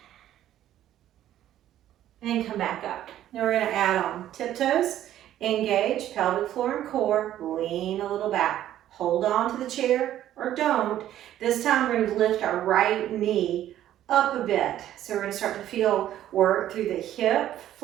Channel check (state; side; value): quieter; left; 12.2 dB